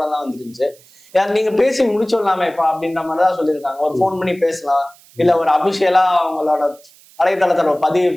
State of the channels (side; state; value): right; noise; hiss, 27 dB below the sound